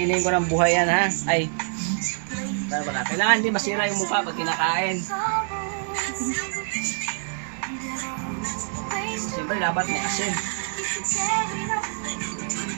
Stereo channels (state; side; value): silent; left; 61 dB below the other